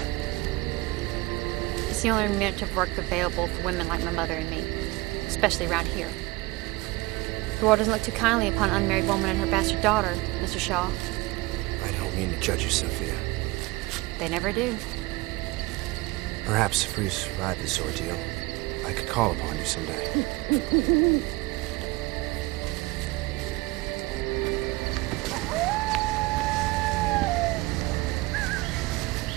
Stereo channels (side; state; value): left; quieter; 21.9 dB